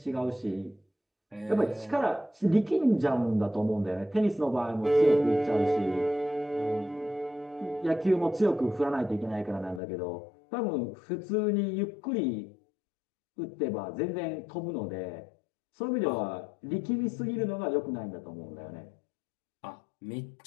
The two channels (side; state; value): right; drops out; at 9.8 s